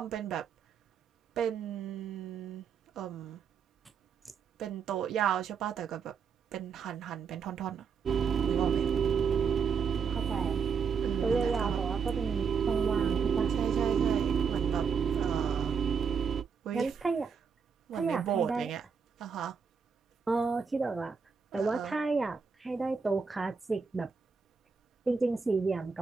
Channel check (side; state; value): left; quieter; 6.1 dB